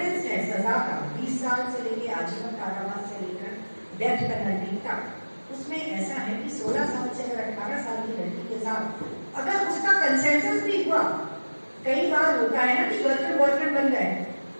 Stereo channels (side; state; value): both; inverted; correlation -1.00